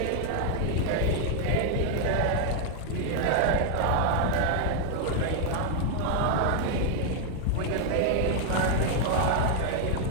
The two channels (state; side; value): different; both; correlation 0.00